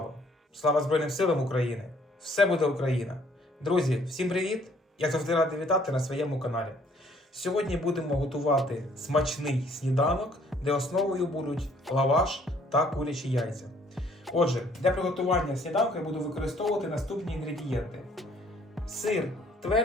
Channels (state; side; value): normal; both; correlation 0.62